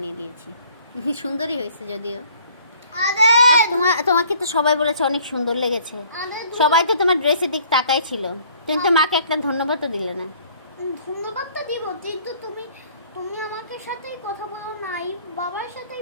দিয়েছি। সুন্দরই হয়েছে যদিও। আরে তোমাকে তো সবাই বলেছে অনেক সুন্দর লেগেছে। সবাই তো তোমার ড্রেসের দিক তাকাই ছিল। তুমি তো মাকে একটা ধন্যবাদ তো দিলে না। ধন্যবাদটা দিব, কিন্তু তুমি আমাকে সাথেই কথা বলো নাই, বাবার সাথেই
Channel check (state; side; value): inverted; both; correlation -0.57